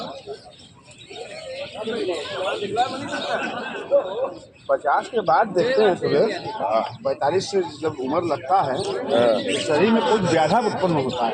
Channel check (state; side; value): identical; both; correlation 1.00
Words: 50 के बाद देखते हैं सुरेश, 45 से जब उम्र लगता है तो शरीर में कुछ व्याधा उत्पन्न होता